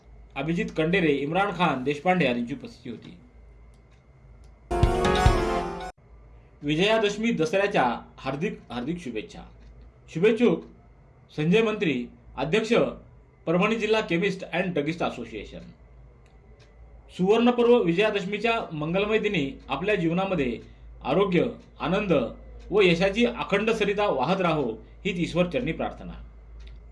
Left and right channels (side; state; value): both; identical; correlation 1.00